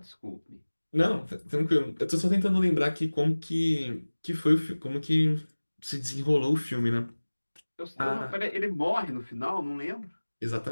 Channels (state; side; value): inverted; both; correlation -1.00